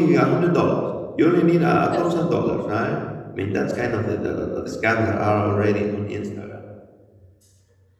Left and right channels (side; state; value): both; identical; correlation 1.00